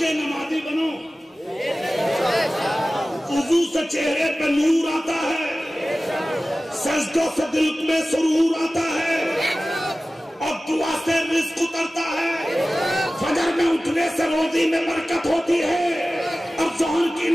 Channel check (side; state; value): both; normal; correlation 0.96